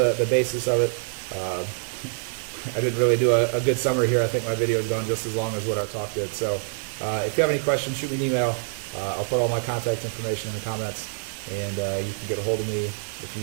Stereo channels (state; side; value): silent; left; digital silence